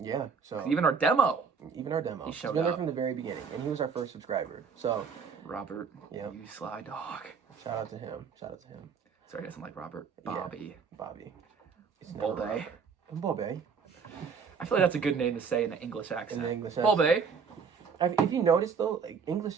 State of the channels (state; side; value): quieter; left; 5.9 dB